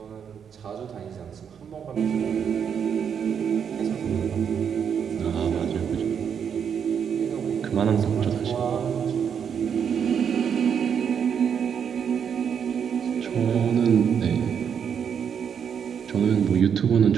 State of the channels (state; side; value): quieter; left; 7.6 dB